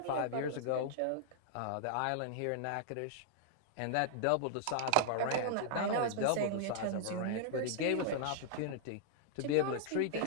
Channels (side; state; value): both; different; correlation -0.01